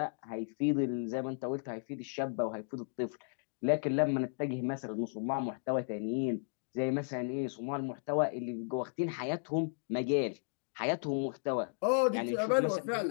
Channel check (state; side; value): silent; right; digital silence